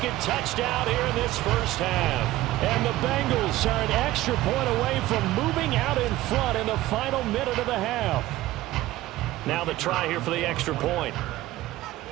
touchdown here in this first half. And the Bengals are an extra point away from moving out in front in the final minute of the half. Now the try here for the extra point.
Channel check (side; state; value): left; quieter; 16.3 dB